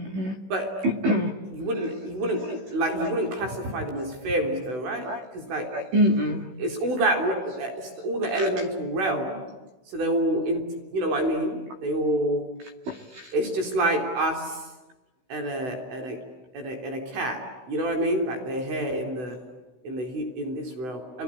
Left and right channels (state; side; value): late; left; 16 ms